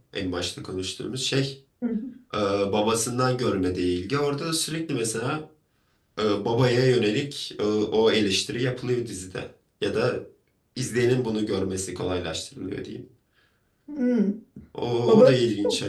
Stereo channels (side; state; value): both; identical; correlation 1.00